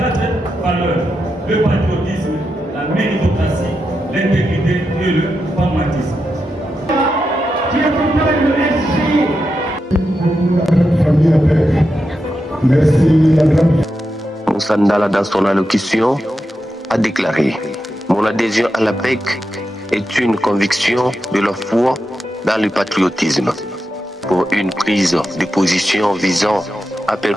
valeurs: le patriotisme, la méritocratie, l'intégrité et le pragmatisme. Qui accompagne le SG. Merci. Moussa Ndala, dans son allocution, a déclaré: mon adhésion à l'APEC est une conviction de la foi dans le patriotisme, pour une prise de position visant à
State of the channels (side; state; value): both; normal; correlation 0.88